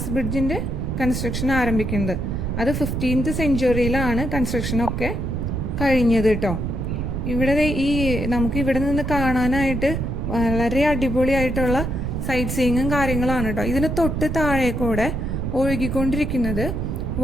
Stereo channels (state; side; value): noise; right; rumble, 2 dB below the sound